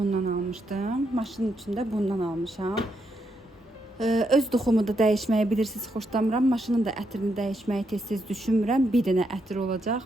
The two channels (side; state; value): both; normal; correlation 0.79